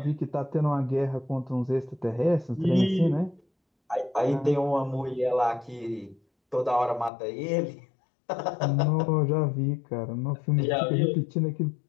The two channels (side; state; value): right; drops out; at 7.1 s